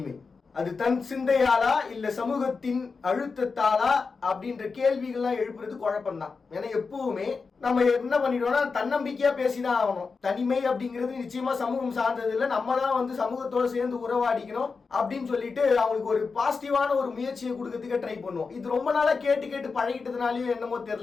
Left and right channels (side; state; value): right; quieter; 4.7 dB